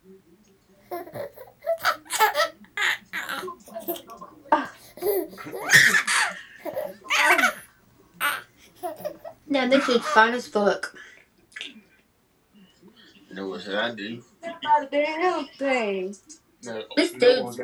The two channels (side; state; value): both; identical; correlation 1.00